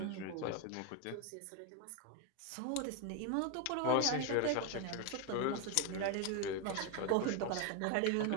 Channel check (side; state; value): both; different; correlation 0.01